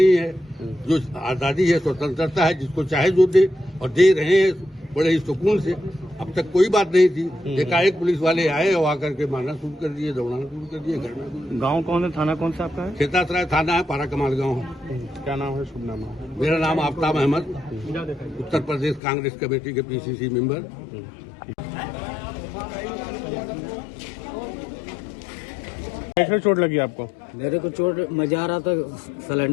है। जो आज़ादी है, स्वतंत्रता है, जिसको चाहे जो दे, और दे रहे हैं बड़े ही सुकून से। अब तक कोई बात नहीं थी। एकाएक पुलिस वाले आए और आकर के मारना शुरू कर दिए, दौड़ाना शुरू कर दिए। घर में गांव कौन है, थाना कौन सा आपका है? खेतासराय थाना है, पारा कमाल गाँव। क्या नाम है, शुभ नाम है? मेरा नाम आफ्ताब अहमद, उत्तर प्रदेश कांग्रेस कमेटी के PCC मेंबर। कैसे चोट लगी आपको? मेरे को चोट, मैं जा रहा था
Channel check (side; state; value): right; drops out; at 19.0 s